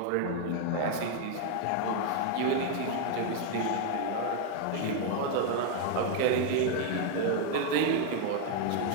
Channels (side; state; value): both; different; correlation 0.01